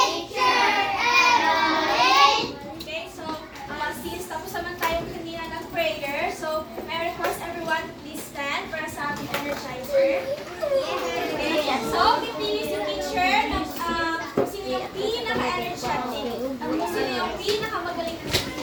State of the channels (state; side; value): identical; both; correlation 1.00